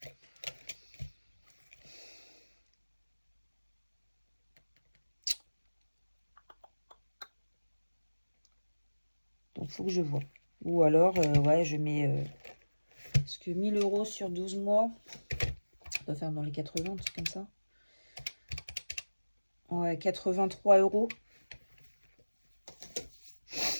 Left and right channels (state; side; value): inverted; both; correlation -1.00